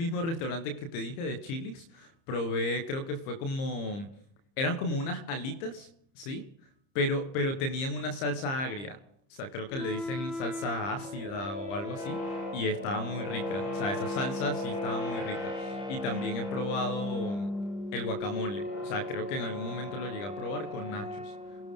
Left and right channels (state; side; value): late; right; 30 ms